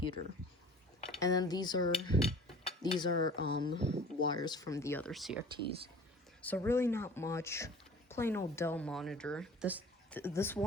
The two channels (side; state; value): both; normal; correlation 0.46